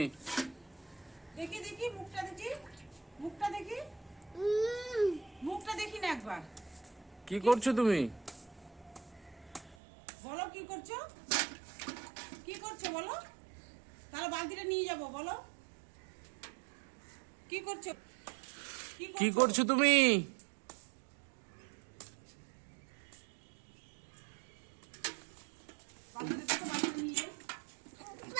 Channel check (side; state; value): left; drops out; at 9.8 s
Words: দেখি দেখি মুখটা দেখি, মুখটা দেখি, মুখটা দেখি না একবার। কি করছো তুমি? বলো কি করছো, কি করছো বলো, তাহলে বালতিটা নিয়ে যাবো। বলো কি করছো, কি করছো তুমি? বালতিটা তো বালতিটা নিয়ে যাই।